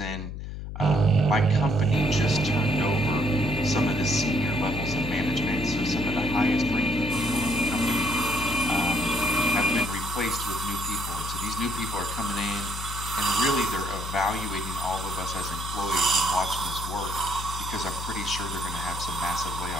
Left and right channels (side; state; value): left; noise; hum, 8 dB below the sound